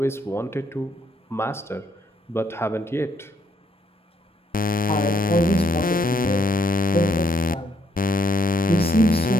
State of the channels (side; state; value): both; normal; correlation 0.72